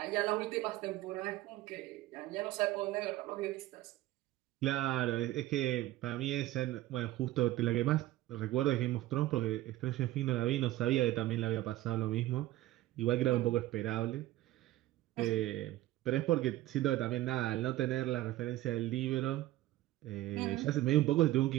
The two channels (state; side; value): quieter; left; 15.9 dB